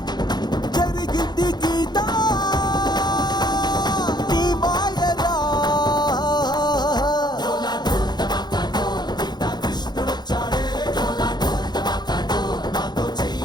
జరిగింది గీత నీ మాయరా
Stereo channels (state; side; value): late; right; 0.21 ms